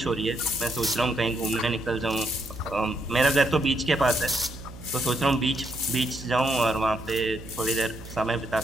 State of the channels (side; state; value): right; noise; hum, 15 dB below the sound